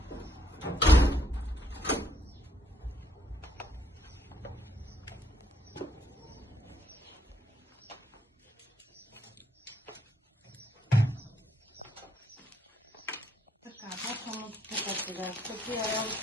Почвам от тук сега. Такива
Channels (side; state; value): both; normal; correlation 0.72